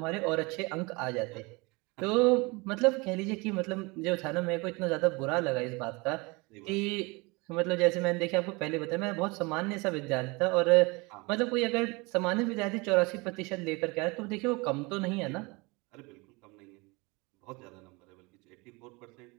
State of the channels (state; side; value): quieter; left; 26.3 dB